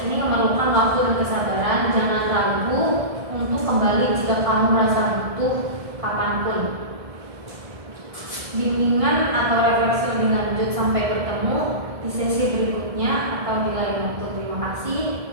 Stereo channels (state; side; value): late; left; 1.7 ms